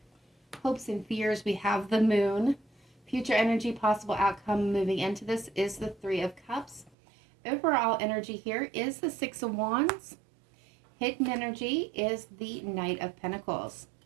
Hopes and fears, we have the Moon. Future energy, possible outcome moving into this is the Three of Cups. Overall energy here is the Six of Wands. Hidden energy is the Knight of Pentacles.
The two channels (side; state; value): left; drops out; at 7.0 s